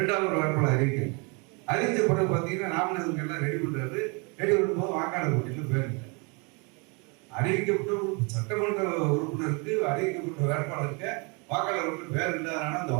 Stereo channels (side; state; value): left; quieter; 31.8 dB